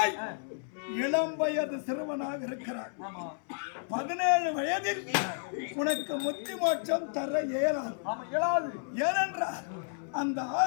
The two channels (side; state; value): right; silent; 57 dB below the other